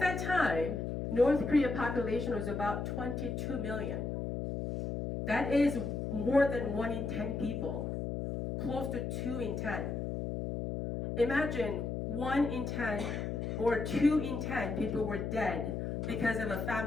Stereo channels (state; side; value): noise; left; hum, 3 dB below the sound